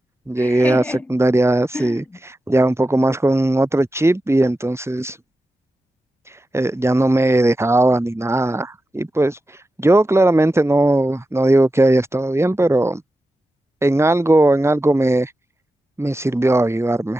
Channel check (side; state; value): both; normal; correlation 0.92